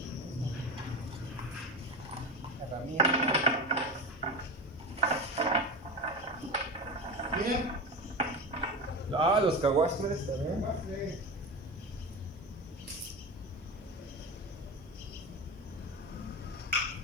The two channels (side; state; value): both; normal; correlation 0.25